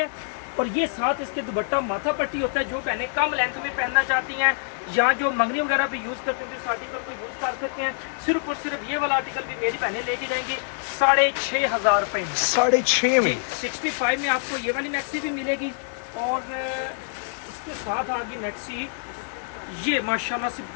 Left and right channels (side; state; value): right; silent; digital silence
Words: और ये साथ इसके दुपट्टा माथा पट्टी होता है, जो बहनें कम लेंथ में पहनना चाहती हैं या जो मंगनी वगैरह भी यूज़ करते हैं, इस आर्टिकल को यूज़ कर सकते हैं। सिर्फ और सिर्फ ये वाला आर्टिकल भी मेरी बहनें लेके जाएंगी 6,500 रुपये में, 6,500 में। 65 में आपको ये वाली मैक्सी भी मिलेगी और इसके साथ आ गई मैक्सी, ये माशाल्लाह से